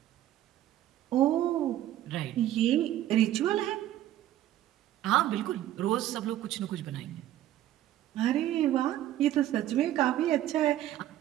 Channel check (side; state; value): left; quieter; 13.0 dB